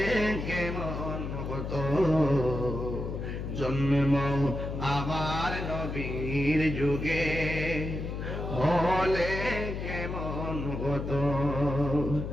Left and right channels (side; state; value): left; noise; hum, 5 dB below the sound